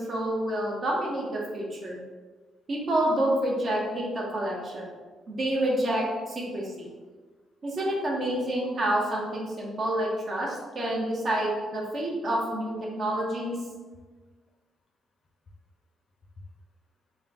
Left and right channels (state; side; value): normal; both; correlation 0.78